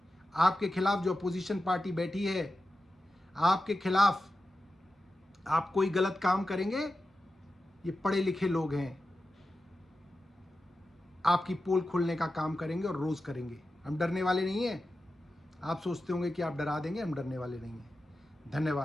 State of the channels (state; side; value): normal; both; correlation 0.92